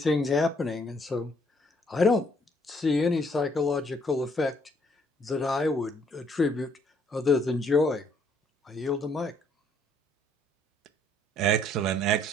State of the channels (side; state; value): both; normal; correlation 0.66